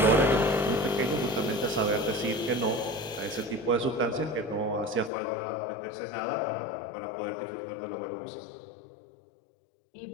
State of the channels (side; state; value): right; drops out; at 5.1 s